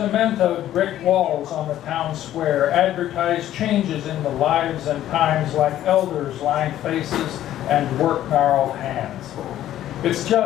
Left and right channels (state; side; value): quieter; right; 12.6 dB